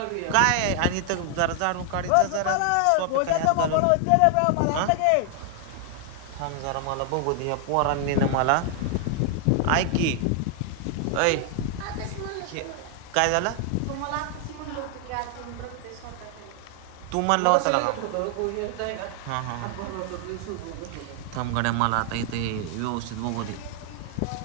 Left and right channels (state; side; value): different; both; correlation 0.00